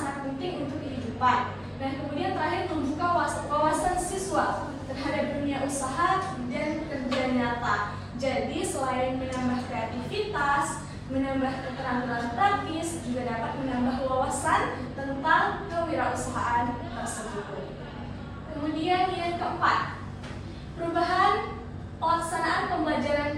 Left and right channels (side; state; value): both; identical; correlation 1.00